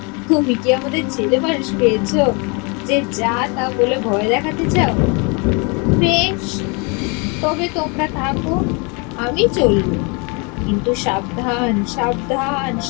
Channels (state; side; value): quieter; right; 31.7 dB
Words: তুমি কি আমাদের ছেলে মানুষ পেয়েছ যে যা তা বলে ভয় দেখাতে চাও? বেশ, তবে তোমরা থাকো, আমি চলবো, কিন্তু সাবধান সাবধান